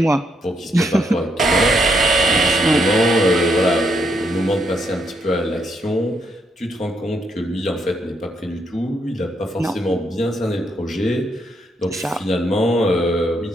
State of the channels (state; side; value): normal; both; correlation 0.76